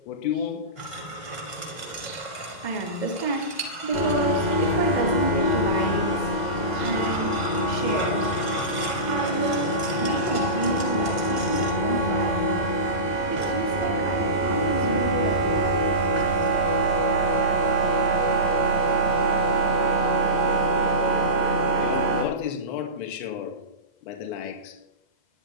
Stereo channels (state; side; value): late; right; 2.0 ms